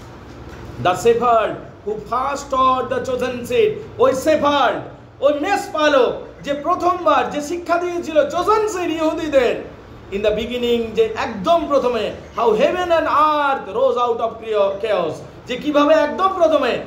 The shepherd who first taught the chosen seed, ওই শেফার্ড, ওই মেষপালক যে প্রথমবার যে শিক্ষা দিয়েছিল চোজেন সিড ইহুদিদের ইন দ্য বিগিনিং, যে একদম প্রথমে, how heaven and earth rose out of chaos, যে কিভাবে একদম প্রথমে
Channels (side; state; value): both; identical; correlation 1.00